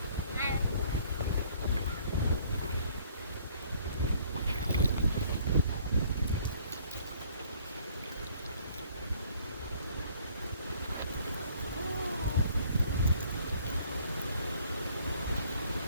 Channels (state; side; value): inverted; both; correlation -0.59